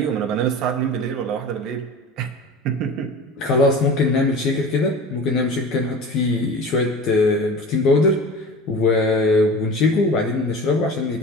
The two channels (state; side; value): normal; both; correlation 0.35